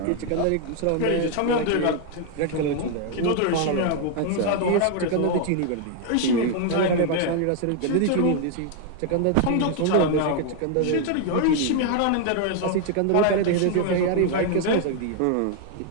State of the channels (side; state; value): both; different; correlation 0.00